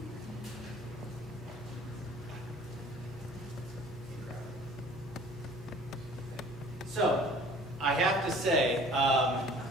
So, I have to say,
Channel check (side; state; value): left; noise; hum, 17 dB below the sound